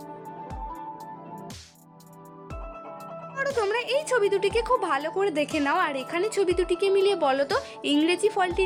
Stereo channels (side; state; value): both; identical; correlation 1.00